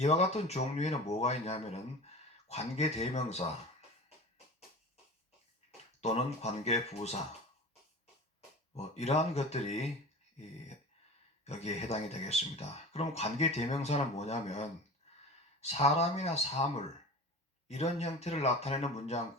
같은 종류에는 뭐가 있냐면은 관계대명사 또는 관계부사, 이러한 것들이 여기에 해당이 되겠습니다. 그럼 관계대명사는 뭐냐면 사람이나 사물, 이런 형태를 나타내는 문장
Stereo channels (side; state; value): both; normal; correlation 0.34